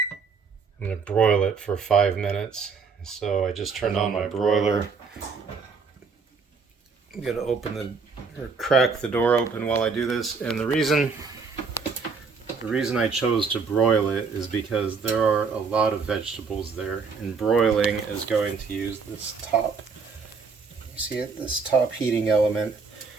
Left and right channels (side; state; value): left; quieter; 5.1 dB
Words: I'm going to broil it for 5 minutes. So I just turned on my broiler. I'm going to open or crack the door open while I do this, and the reason I chose to broil it is because there are a lot of vegetables there, and broiling is going to use this top, you see it, this top heating element,